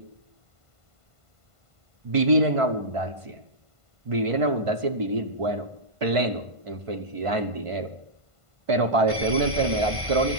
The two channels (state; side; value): late; left; 1.5 ms